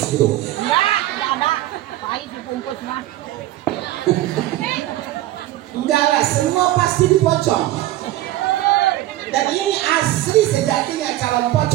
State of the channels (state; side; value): quieter; left; 15.3 dB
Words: gitu. Enggak ada. Pais dibungkus mah. Enggak lah, semua pasti dipocong. Dan ini asli sejatinya calon